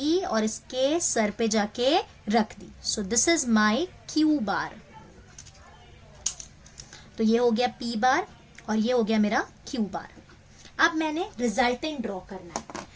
और इसके सर पे जाके रख दी. So this is my q bar. तो ये हो गया p बार और ये हो गया मेरा q बार. अब मैंने रिजल्टेंट ड्रॉ करना है.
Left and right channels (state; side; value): identical; both; correlation 1.00